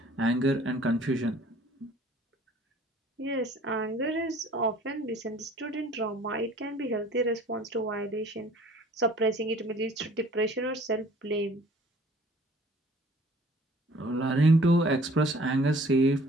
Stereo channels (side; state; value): both; normal; correlation 0.53